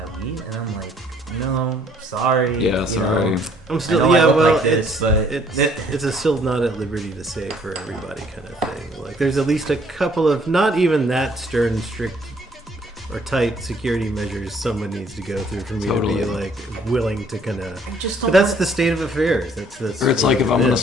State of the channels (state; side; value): normal; both; correlation 0.62